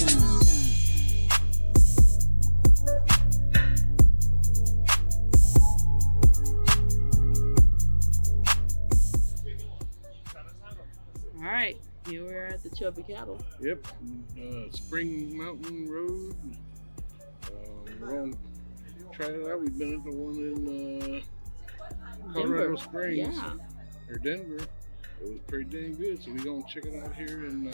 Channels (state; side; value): inverted; both; correlation -1.00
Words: All right, here we are at the Chubby Cattle. Yep, Spring Mountain Road. We're going to try it out. We've been at the one in Coronado Springs, or Denver. It was pretty dang good, so we're going to check it out here in